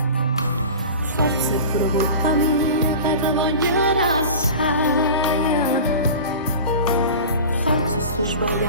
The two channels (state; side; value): inverted; both; correlation -0.34